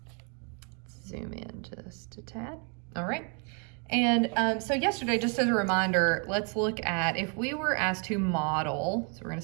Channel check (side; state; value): left; quieter; 37.4 dB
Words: Let's zoom in just a tad. All right. And so yesterday, just as a reminder, let's look at if we were asked to model. So we're going